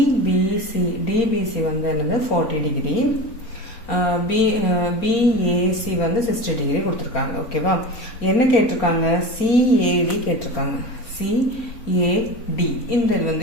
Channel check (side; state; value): right; late; 4.3 ms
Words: DBC வந்து என்னது 40 degree. BAC வந்து 60 degree கொடுத்திருக்காங்க. ஓகேவா? என்ன கேட்டிருக்காங்க? CAD கேட்டிருக்காங்க. CAD இந்த வந்து